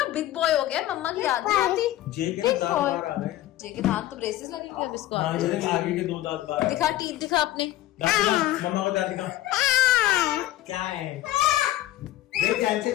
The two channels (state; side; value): quieter; right; 14.9 dB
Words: बिग बॉय हो गया, मम्मा की याद नहीं आती। जे के दांत बाहर आ रहे हैं। जे के दांत तो ब्रेसेस लगेंगे अब इसको। हाँ, ये आगे के 2 दांत बाहर। दिखा टीथ दिखा अपने, दांत दिखा, मम्मा को दांत दिखा। क्या है? देख कैसे